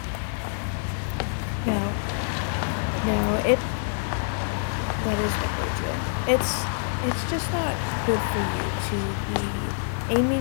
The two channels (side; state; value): right; silent; digital silence